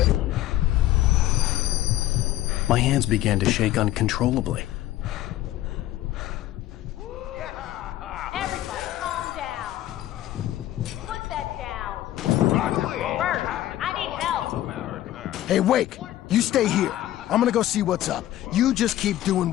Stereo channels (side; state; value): right; quieter; 14.0 dB